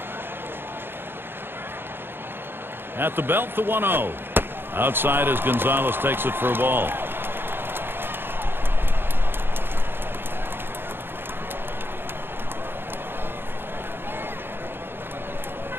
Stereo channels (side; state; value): left; late; 0.10 ms